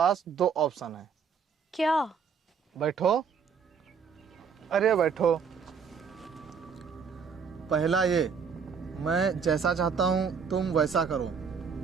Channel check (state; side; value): quieter; left; 6.2 dB